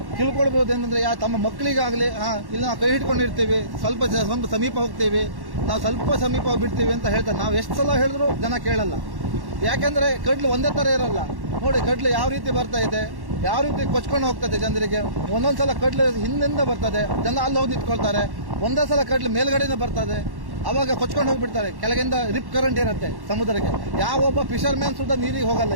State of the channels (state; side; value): late; left; 1.1 ms